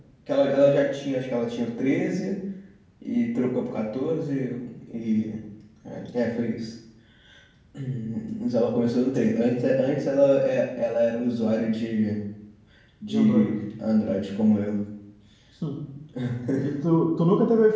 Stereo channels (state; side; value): identical; both; correlation 1.00